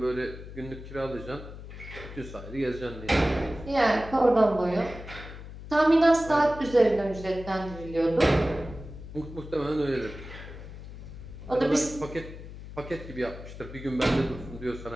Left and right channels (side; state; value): left; noise; hum, 13 dB below the sound